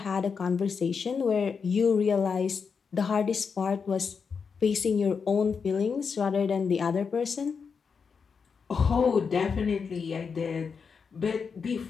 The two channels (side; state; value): right; quieter; 5.8 dB